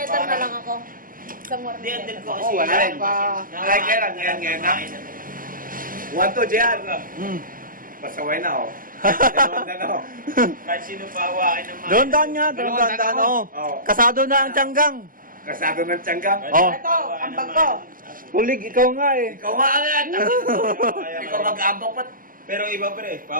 letter na parang- lang ako. Isang warning hindi, andun letter. ko kasi. wala rin pa. Ay, kailan, ngayon na. 1-2, Jan. Hmm. Pasaway na, oh. Dalawang na, oh. Kahit sino pa hawakin ng mga... Doon daan nga, doon daan. Oh. Oo. Kasado na ang tiyanggang. Kasado ng tiyanggang. Oh. Ito, ang bag ko. Kulig, ikaw nga eh. Ikaw nga agad. Ikaw mag-aambak pa. Pero iba, pre.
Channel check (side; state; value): left; late; 0.41 ms